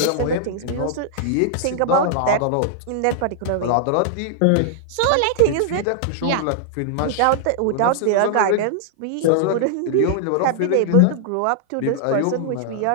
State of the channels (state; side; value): different; both; correlation -0.01